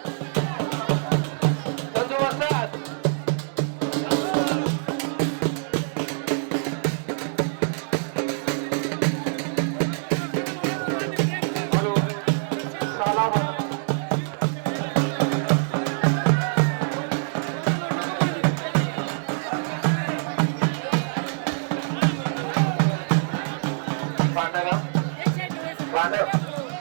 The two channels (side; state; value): left; silent; digital silence